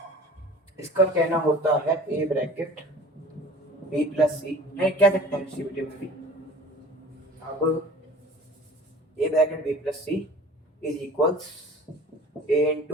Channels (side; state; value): both; normal; correlation 0.43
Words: इसका कहना होता है a bracket b plus c, नहीं क्या सकते हैं डिस्ट्रीब्यूटिव में भी। अब a bracket b plus c is equals a